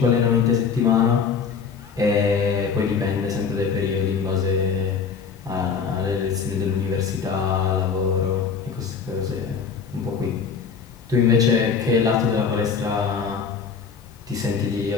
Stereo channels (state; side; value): quieter; right; 6.1 dB